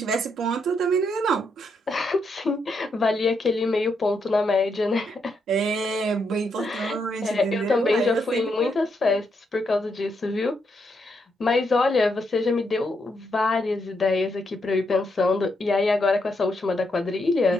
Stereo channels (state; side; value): normal; both; correlation 0.79